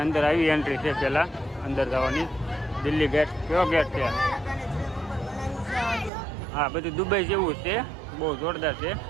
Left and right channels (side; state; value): left; drops out; at 6.1 s